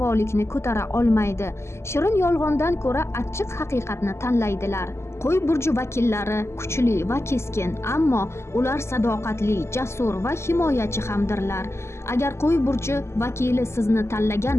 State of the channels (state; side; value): late; right; 0.13 ms